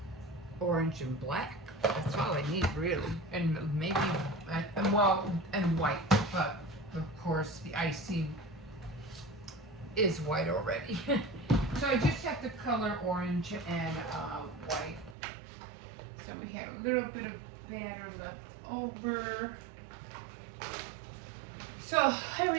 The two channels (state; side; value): drops out; left; at 15.2 s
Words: and black. That's all I need, really, and maybe and white. But of course, the icing is white already. So I just have to color orange and white. So we had a little bit of batter left over. So here we